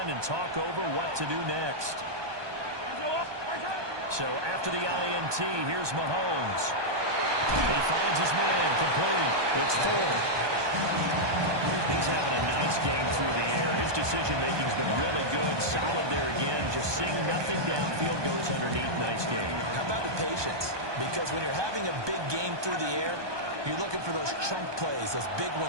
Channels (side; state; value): left; late; 1.2 ms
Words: and talk over what to do next. So after the INT, here's Mahomes. He finds his man complete. It's Ford. He's having a nice game through the air. His decision-making's been really good. Solid there again. Just seeing nothing downfield, goes underneath. Nice game. How about the patience? Because when you're having a big game through the air, you're looking for those chunk plays, those big